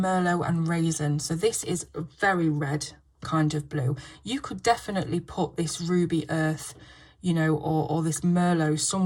and raisin. So this is a very red kind of blue. You could definitely put this ruby earth, you know, or this merlot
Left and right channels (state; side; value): identical; both; correlation 1.00